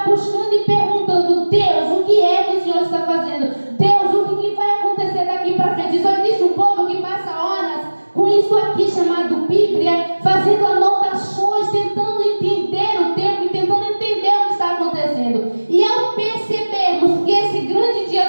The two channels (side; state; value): both; inverted; correlation -1.00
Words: buscando e perguntando: Deus, o que é que o Senhor está fazendo? Deus, o que vai acontecer daqui para frente? Só existe um povo que passa horas com isso aqui chamado Bíblia, fazendo anotações, tentando entender o tempo e tentando entender o que está acontecendo. E ao percebermos que esse grande dia